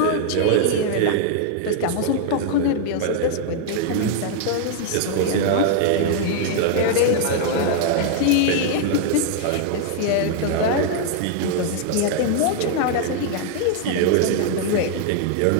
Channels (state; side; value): different; both; correlation 0.00